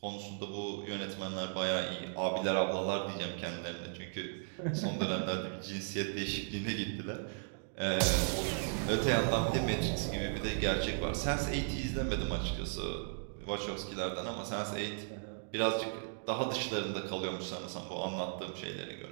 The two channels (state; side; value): silent; left; digital silence